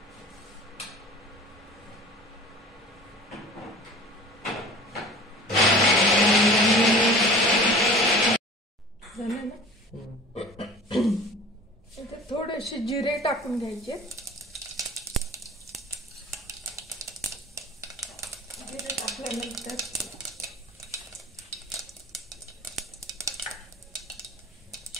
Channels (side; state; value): both; normal; correlation 0.42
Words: झालं ना. इथे थोडेसे जिरे टाकून घ्यायचे. जिरे टाकल्यानंतर